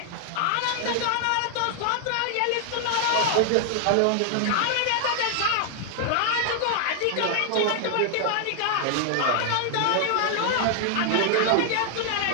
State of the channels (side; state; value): both; different; correlation 0.00